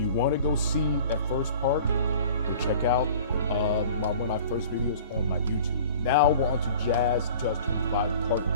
want to go see that first part, go check out one of my first videos on my YouTube. Now we're on to Jazz 2025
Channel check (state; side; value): inverted; both; correlation -0.45